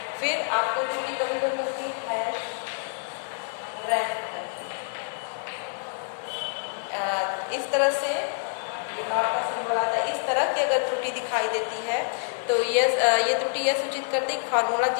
फिर आपको त्रुटि कभी कभी मिलती है रैंक इस तरह से ये नॉट का सिंबल आता है। इस तरह की अगर त्रुटि दिखाई देती है तो ये त्रुटि यह सूचित करती है कि फार्मूला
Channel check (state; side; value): silent; right; 60 dB below the other